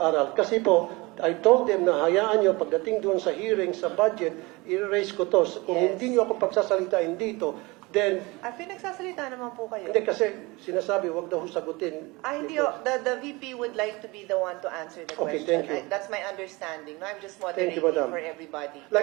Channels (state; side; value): quieter; left; 24.0 dB